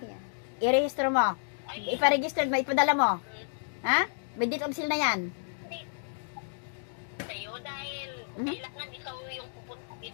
i-rehistro mo. Iparegister mo, ipadala mo. Ha? May deed of sale na yan. Kailangan ikaw yung pupunta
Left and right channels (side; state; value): right; silent; digital silence